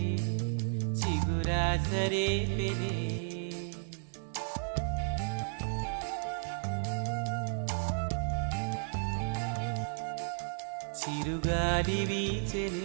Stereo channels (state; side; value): silent; left; digital silence